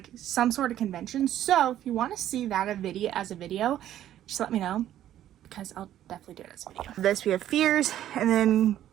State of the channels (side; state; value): left; quieter; 12.0 dB